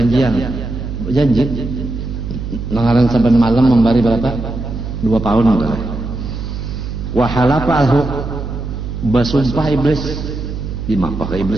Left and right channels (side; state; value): right; noise; hum, 6 dB below the sound